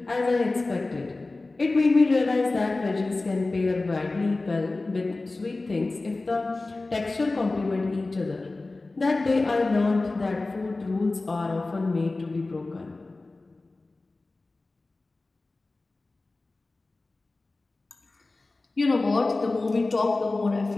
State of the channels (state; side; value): quieter; right; 3.3 dB